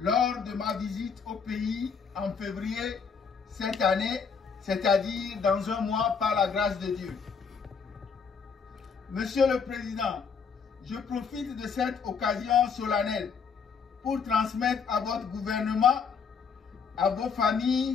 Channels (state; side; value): quieter; right; 5.9 dB